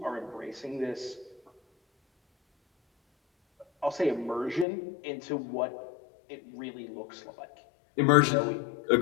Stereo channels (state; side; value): drops out; right; at 4.7 s